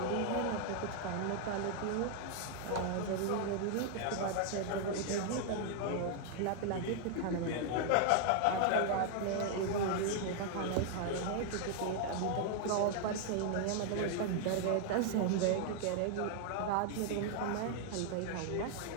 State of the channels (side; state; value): both; different; correlation 0.00